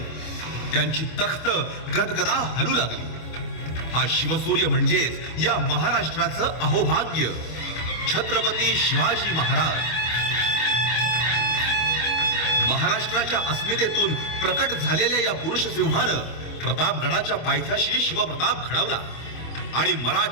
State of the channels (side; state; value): right; late; 25 ms